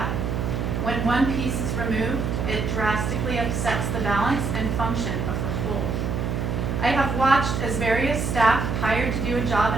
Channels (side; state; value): right; noise; hum, 1 dB below the sound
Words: when one piece is removed, it drastically upsets the balance and function of the whole. I have watched as various staff hired to do a